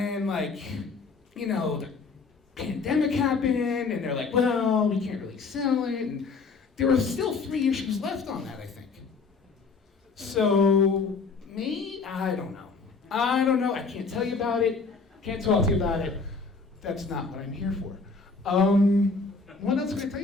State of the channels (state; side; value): quieter; right; 4.5 dB